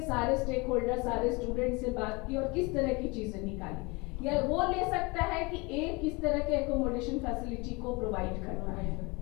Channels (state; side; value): quieter; right; 26.5 dB